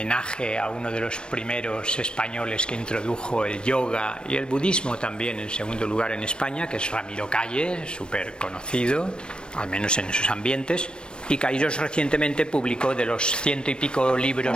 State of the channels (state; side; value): late; right; 0.050 ms